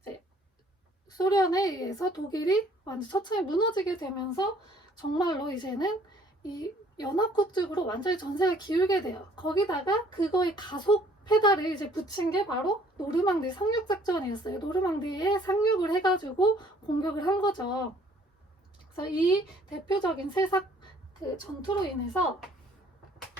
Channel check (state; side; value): normal; both; correlation 0.58